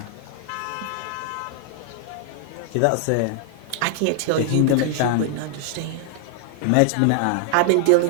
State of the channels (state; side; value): different; both; correlation 0.00